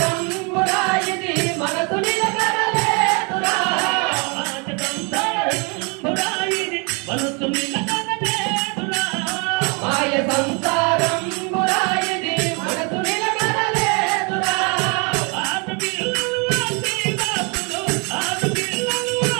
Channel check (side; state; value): left; quieter; 32.9 dB